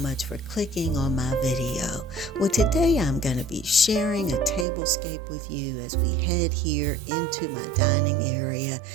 for clicking on my video. Well, today I'm going to be sharing a tablescape with you as we head here into my dining area,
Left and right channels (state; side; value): drops out; left; at 4.7 s